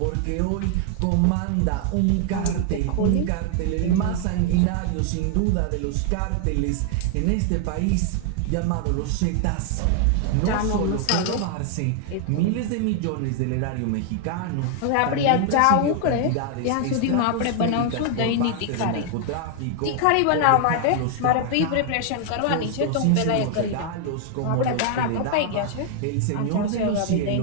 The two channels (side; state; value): both; different; correlation 0.00